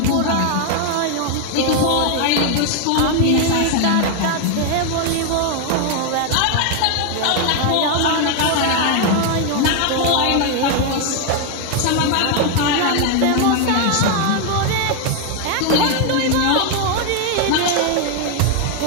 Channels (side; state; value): both; different; correlation 0.00